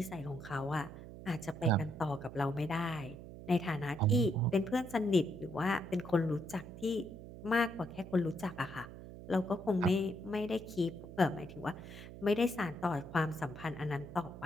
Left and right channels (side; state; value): right; noise; hum, 13 dB below the sound